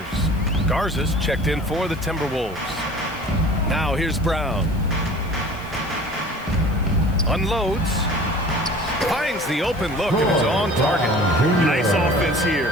Garza's checked in for the Timberwolves. Now here's Brown. Unloads. Finds the open look, and it's on target. Nice offense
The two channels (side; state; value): left; noise; hiss, 24 dB below the sound